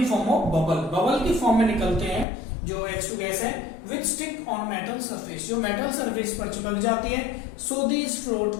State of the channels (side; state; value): right; drops out; at 2.2 s